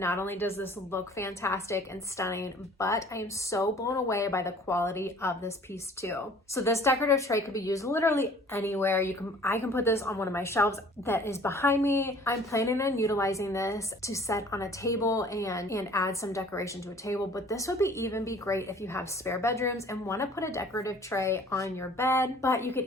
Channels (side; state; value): both; normal; correlation 0.51